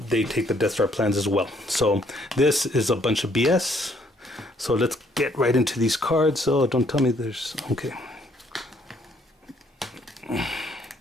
they take the Death Star plans as well. So this is a bunch of BS. So let's get right into these cards. Oh, don't tell me there's... Okay.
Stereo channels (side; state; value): both; normal; correlation 0.67